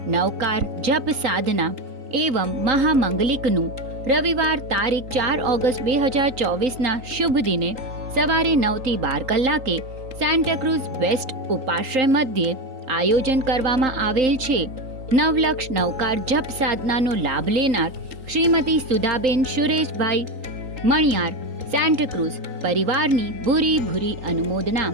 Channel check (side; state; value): left; late; 3.8 ms